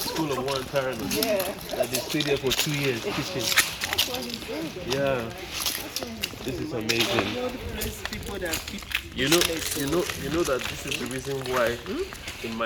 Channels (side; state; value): both; identical; correlation 1.00